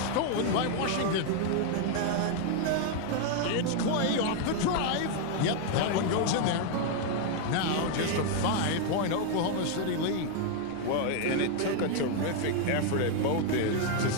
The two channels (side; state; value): both; different; correlation 0.00